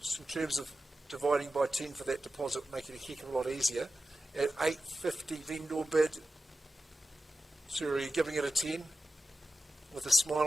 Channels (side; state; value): both; normal; correlation 0.93